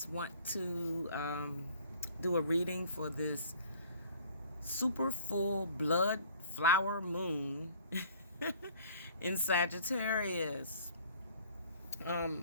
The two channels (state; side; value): inverted; both; correlation -0.53